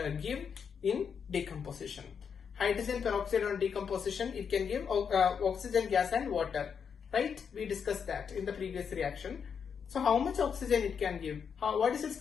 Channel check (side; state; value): right; quieter; 6.8 dB